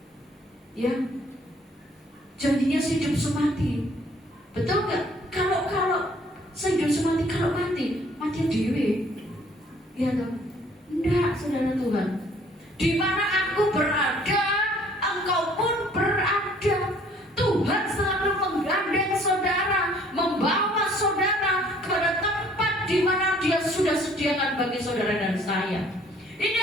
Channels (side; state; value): both; normal; correlation 0.58